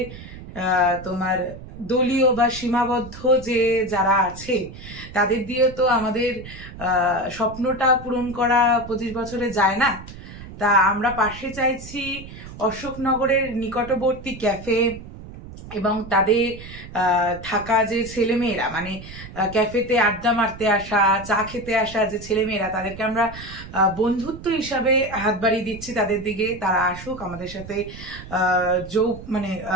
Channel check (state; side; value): noise; right; rumble, 14 dB below the sound